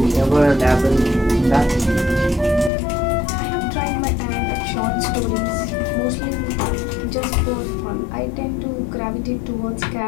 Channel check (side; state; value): right; drops out; at 2.7 s